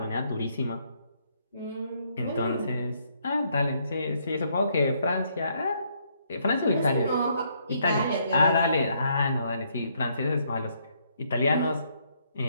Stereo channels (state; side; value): inverted; both; correlation -0.72